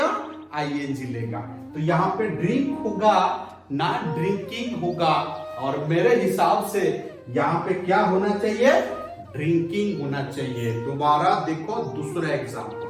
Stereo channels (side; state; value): both; identical; correlation 1.00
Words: आईएनजी लेगा। तो यहाँ पे ड्रिंक होगा ना ड्रिंकिंग होगा, और मेरे हिसाब से यहाँ पे क्या होना चाहिए, ड्रिंकिंग होना चाहिए। दोबारा देखो दूसरा